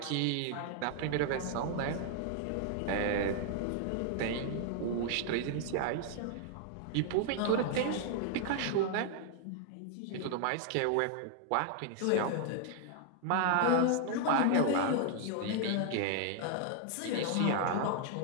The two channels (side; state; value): both; different; correlation 0.00